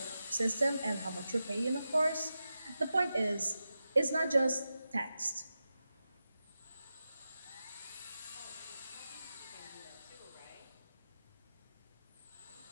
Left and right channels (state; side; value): inverted; both; correlation -0.91